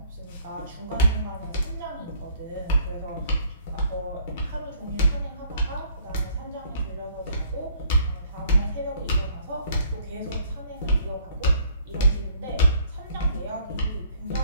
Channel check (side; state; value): both; inverted; correlation -0.61